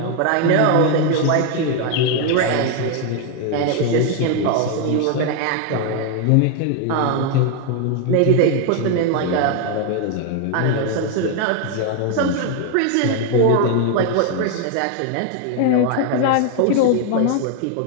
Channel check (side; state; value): both; different; correlation 0.01